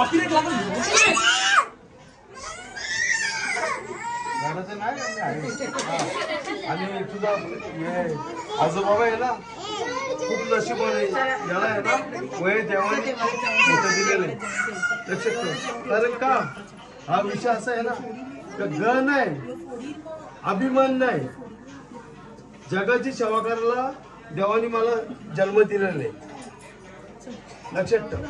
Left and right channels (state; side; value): identical; both; correlation 1.00